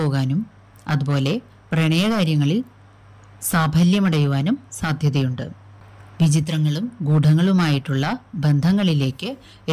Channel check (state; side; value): identical; both; correlation 1.00